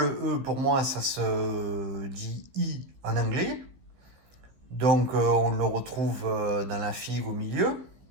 E, pour moi, ça se dit I en anglais. Donc, on le retrouve dans la figue au milieu.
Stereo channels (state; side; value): late; left; 16 ms